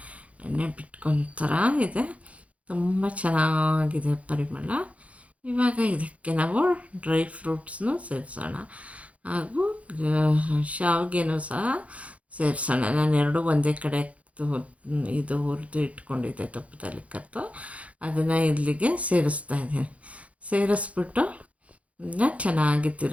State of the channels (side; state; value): left; late; 0.065 ms